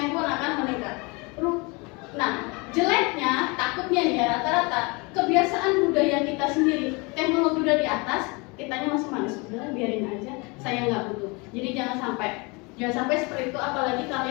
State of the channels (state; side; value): quieter; right; 28.3 dB